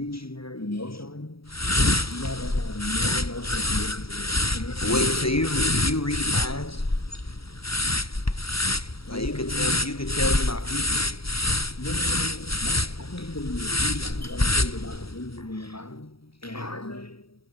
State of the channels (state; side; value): late; right; 0.76 ms